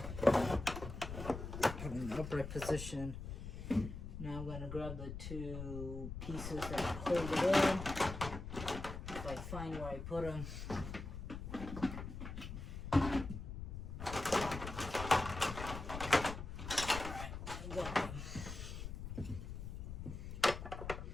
Put in the upright position. Now I'm going to grab the two pieces that hold it in. If I find where I put them. Alright, I got them.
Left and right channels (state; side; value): noise; left; rumble, 7 dB below the sound